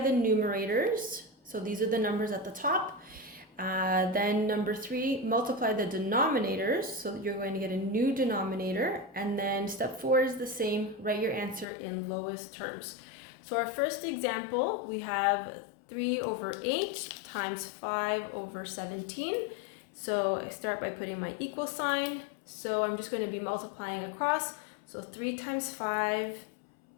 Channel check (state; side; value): drops out; right; at 11.7 s